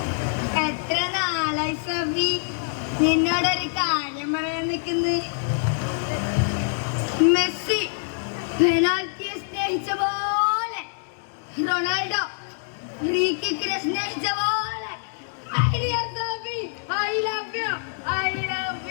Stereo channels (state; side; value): silent; right; 62 dB below the other